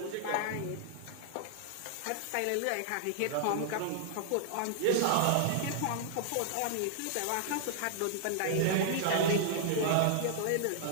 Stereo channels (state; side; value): different; both; correlation -0.01